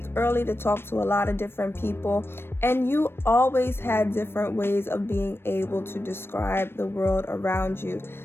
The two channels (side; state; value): right; late; 0.11 ms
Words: early, to talk to a lot of different people, and you always had different ways of being able to describe the world around you.